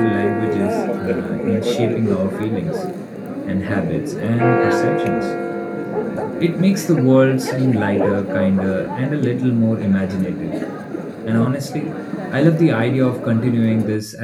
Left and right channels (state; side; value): identical; both; correlation 1.00